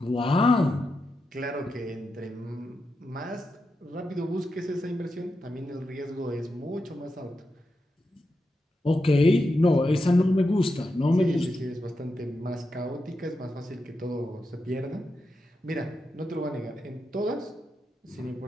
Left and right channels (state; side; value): normal; both; correlation 0.87